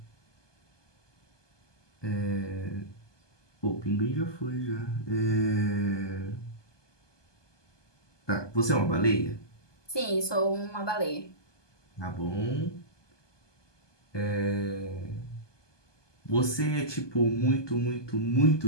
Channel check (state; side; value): late; right; 1.2 ms